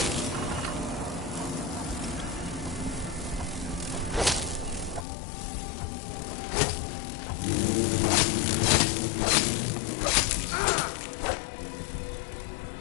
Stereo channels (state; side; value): drops out; right; at 5.1 s